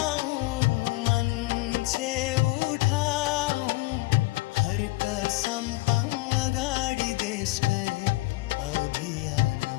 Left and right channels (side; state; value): right; quieter; 21.7 dB